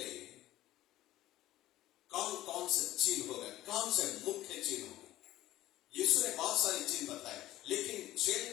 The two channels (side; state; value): right; quieter; 15.3 dB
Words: कौन कौन से चिन्ह होगा, कौन से मुख्य चिन्ह होगा. यीशु ने बहुत सारी चिन्ह बताए, लेकिन